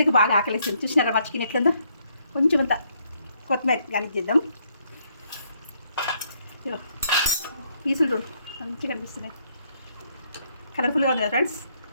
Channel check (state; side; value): inverted; both; correlation -0.71